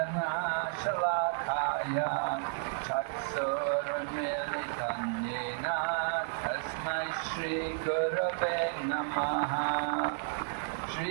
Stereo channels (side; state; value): left; silent; digital silence